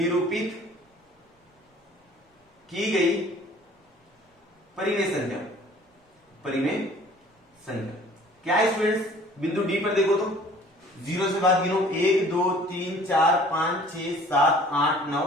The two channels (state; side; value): normal; both; correlation 0.51